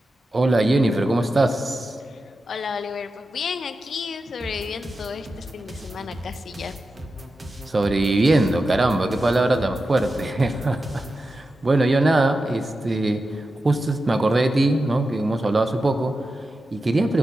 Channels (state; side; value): normal; both; correlation 0.91